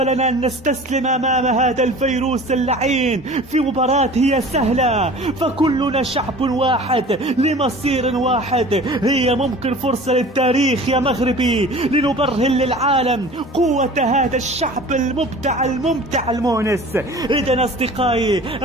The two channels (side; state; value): both; normal; correlation 0.42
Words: أن نستسلم أمام هذا الفيروس اللعين في مباراة هي سهلة، فكلنا شعب واحد لمصير واحد. هي ممكن فرصة للتاريخ يا مغربي لنبرهن للعالم قوة هذا الشعب المبدع الممتع المونس. إذن أصدقائي